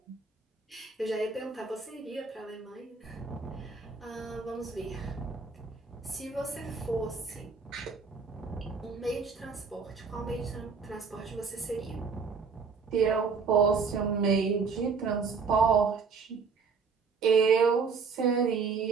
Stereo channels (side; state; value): left; quieter; 5.2 dB